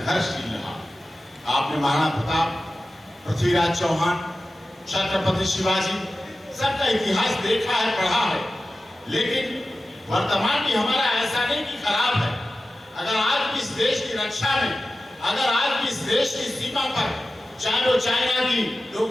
रहा। आपने महाराणा प्रताप, पृथ्वीराज चौहान, छत्रपति शिवाजी, सबका इतिहास देखा है, पढ़ा है, लेकिन वर्तमान भी हमारा ऐसा नहीं कि खराब है। अगर आज भी इस देश की रक्षा में, अगर आज भी इस देश की सीमा पर, चाहे वो चाइना की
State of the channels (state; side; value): normal; both; correlation 0.94